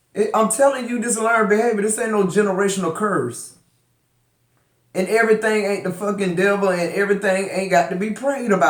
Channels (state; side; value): identical; both; correlation 1.00